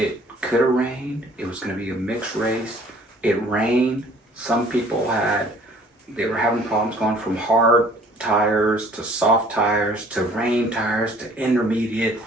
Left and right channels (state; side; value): normal; both; correlation 0.55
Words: could have rained. It was going to be a mixed race. It rained. Some people they were having problems going from hard tires to soft tires to rain tires to intermediate.